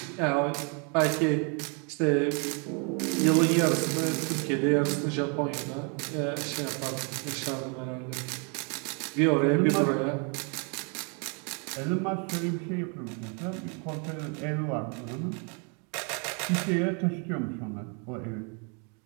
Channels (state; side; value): quieter; left; 36.3 dB